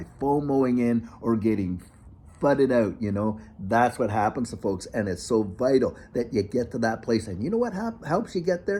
FOMOing in or getting FUDded out. That's what happens to folks, and it's so vital that you get to that place. And you know what helps you get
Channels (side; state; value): both; identical; correlation 1.00